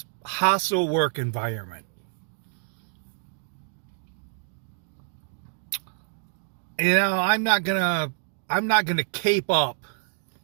hostile work environment. You know, I'm not gonna cape up,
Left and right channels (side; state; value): left; silent; digital silence